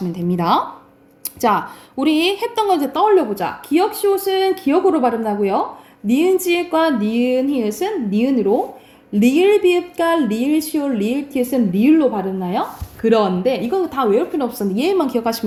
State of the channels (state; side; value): identical; both; correlation 1.00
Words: 됩니다. 자, 우리 했던 거 이제 떠올려보자. 기역 시옷은 기역으로 발음나고요. 니은 지읒과 니은 히읗은 니은으로, 리을 비읍과 리을 시옷, 리을 티읕은 리을로 발음나요. 그런데 이건 다 외울 필요 없었는데 얘만